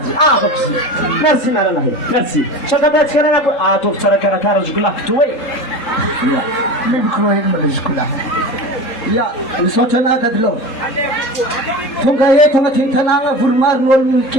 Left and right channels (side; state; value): right; late; 3.7 ms